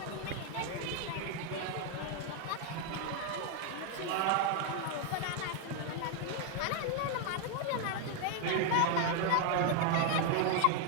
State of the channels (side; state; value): both; different; correlation 0.01